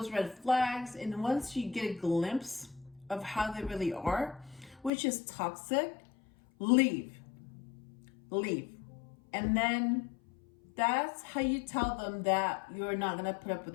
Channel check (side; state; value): right; drops out; at 4.9 s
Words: red flags, and once you get a glimpse of how they really are, which is toxic, leave. And then that's how you tell them that you're not gonna put up with